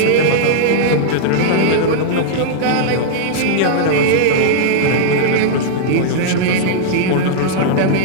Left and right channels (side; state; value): both; different; correlation -0.02